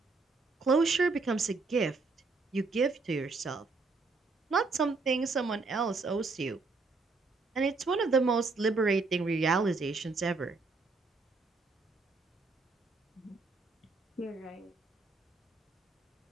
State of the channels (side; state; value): left; quieter; 4.0 dB